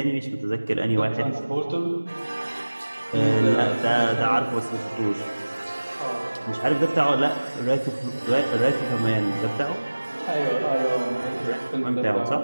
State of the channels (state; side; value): inverted; both; correlation -1.00